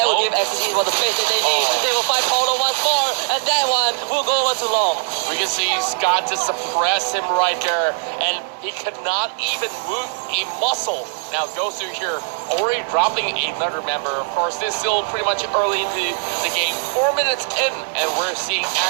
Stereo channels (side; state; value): left; silent; digital silence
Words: will give Axis Esports the space that they need. They will fight Paulo once more, and that one will go over too long. We can see Scott to suppress him right there, and he could not even move a muscle. Now Gosu here already dropping another member. Of course, this is still pretty much early into the game, 4 minutes in, and we're seeing